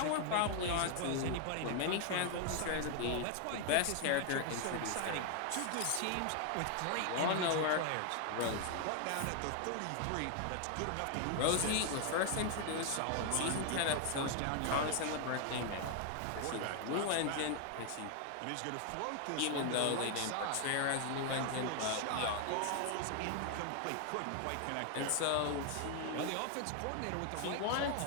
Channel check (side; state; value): both; different; correlation 0.00